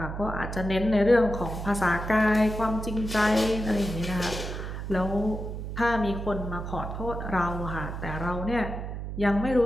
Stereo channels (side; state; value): right; noise; hum, 6 dB below the sound